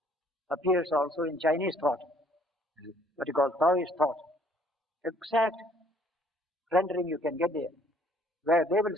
appears also in Chinese thought, what you call Taoist thought. Exact rendering you can get there, where they will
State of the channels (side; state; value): both; normal; correlation 0.61